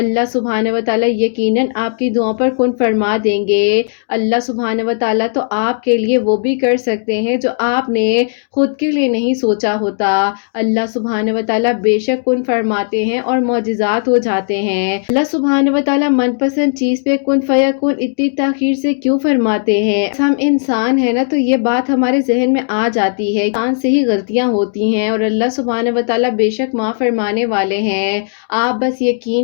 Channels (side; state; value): right; silent; digital silence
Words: सुब्हान व तआला यकीनन आपकी दुआ पर कुन फरमा देंगे। अल्लाह सुब्हान व तआला तो आपके लिए वो भी कर सकते हैं जो आपने खुद के लिए नहीं सोचा होता। अल्लाह सुब्हान व तआला बेशक कुन फरमाते हैं और मौजिज़ात हो जाते हैं। अल्लाह सुब्हान व तआला मनपसंद चीज पे कुन फयकुन इतनी ताखीर से क्यों फरमाते हैं? हम इंसान है ना, तो ये बात हमारे जहन में आ जाती है। इंसान से ही गलतियां होती हैं और अल्लाह सुब्हान व तआला बेशक माफ फरमाने वाले हैं। आप बस